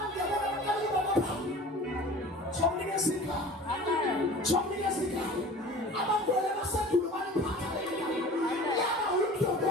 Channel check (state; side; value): normal; both; correlation 0.41